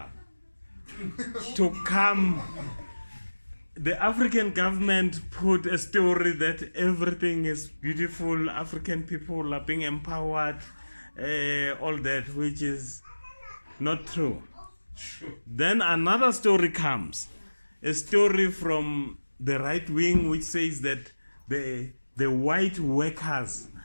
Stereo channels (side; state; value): both; inverted; correlation -1.00